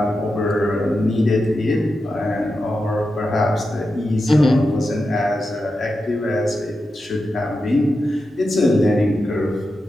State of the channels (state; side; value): normal; both; correlation 0.89